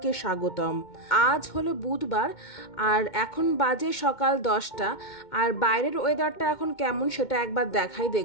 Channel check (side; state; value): right; late; 2.2 ms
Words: স্বাগতম। আজ হলো বুধবার আর এখন বাজে সকাল 10টা। আর বাইরের ওয়েদারটা এখন কেমন সেটা একবার দেখাই